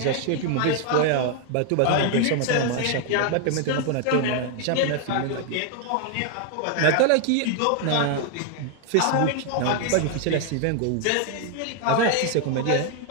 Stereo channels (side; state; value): both; different; correlation 0.00